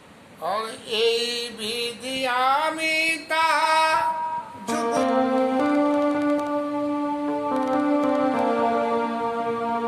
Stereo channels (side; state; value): both; identical; correlation 1.00